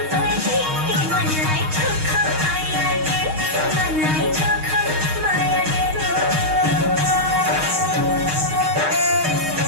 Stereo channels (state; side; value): late; left; 6.4 ms